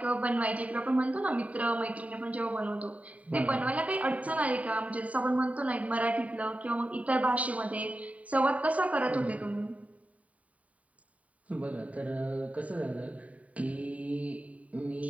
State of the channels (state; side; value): late; left; 0.068 ms